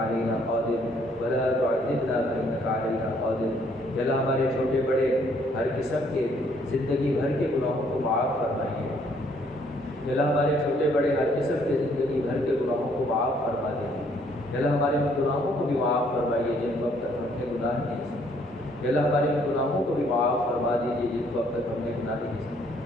علينا قادر، ولا تعذبنا فإنك علينا قادر. یا اللہ ہمارے چھوٹے بڑے ہر قسم کے زندگی بھر کے گناہوں کو معاف فرمائیے. یا اللہ ہمارے چھوٹے بڑے ہر قسم کے زندگی بھر کے گناہوں کو معاف فرما دیجیے. یا اللہ ہمارے گناہوں کو بھی معاف فرمائیے جن کو اب تک ہم نے گناہ نہیں سمجھے. یا اللہ ہمارے گناہوں کو بھی معاف فرما دیجیے جن کو اب تک ہم نے گناہ نہیں سمجھے.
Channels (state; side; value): normal; both; correlation 0.65